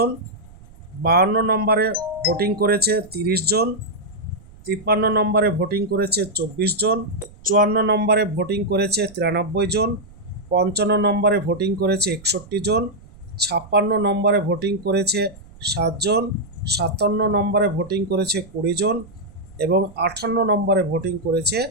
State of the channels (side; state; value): right; noise; rumble, 22 dB below the sound